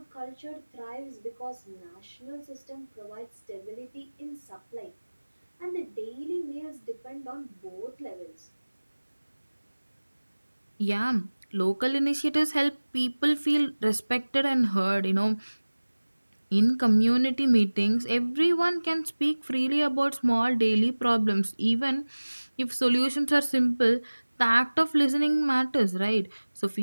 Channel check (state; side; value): inverted; both; correlation -1.00